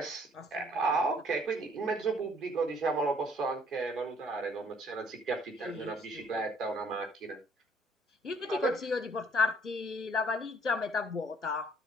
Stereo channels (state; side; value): normal; both; correlation 0.61